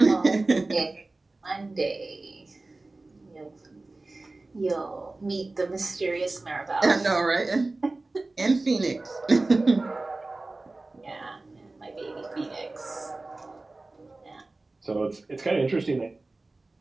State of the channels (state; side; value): quieter; left; 3.2 dB